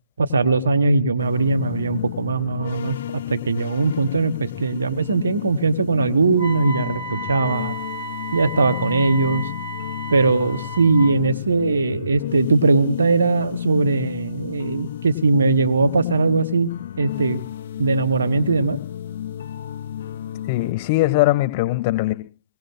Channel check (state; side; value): inverted; both; correlation -0.71